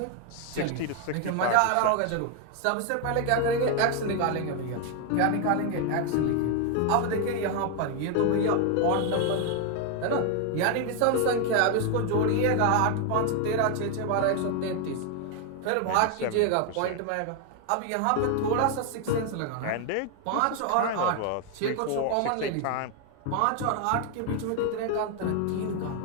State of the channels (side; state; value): both; different; correlation 0.01